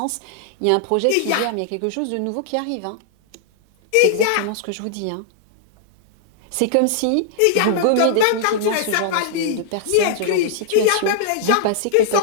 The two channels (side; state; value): both; different; correlation -0.01